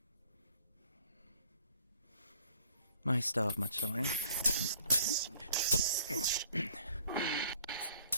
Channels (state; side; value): inverted; both; correlation -0.57